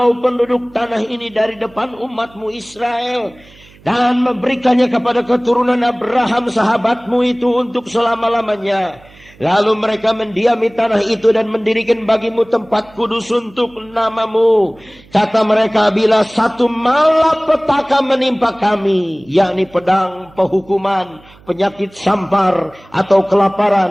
penduduk tanah ini dari depan umat-Mu Israel, dan memberikannya kepada keturunan Abraham sahabat-Mu itu untuk selama-lamanya? Lalu mereka mendiami tanah itu dan mendirikan bagi-Mu tempat kudus untuk nama-Mu. Kata mereka, bila satu malapetaka menimpa kami, yakni pedang, penghukuman, penyakit sampar, atau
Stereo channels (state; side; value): noise; right; hum, 26 dB below the sound